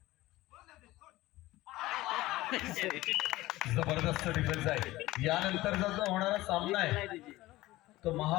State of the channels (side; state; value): right; quieter; 17.9 dB